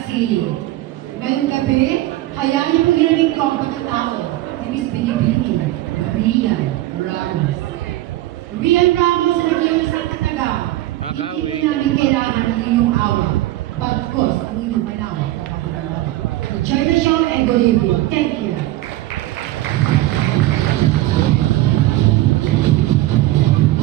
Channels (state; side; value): quieter; left; 16.2 dB